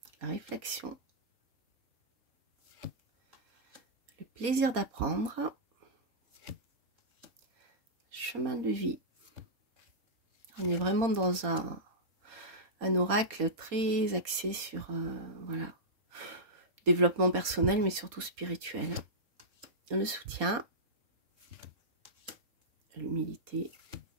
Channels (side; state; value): left; late; 4.2 ms